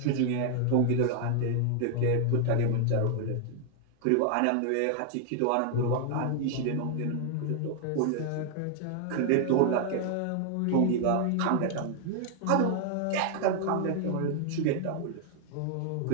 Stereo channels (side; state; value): both; different; correlation 0.00